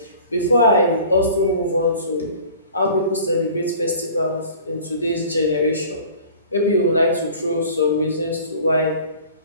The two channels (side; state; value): both; inverted; correlation -0.45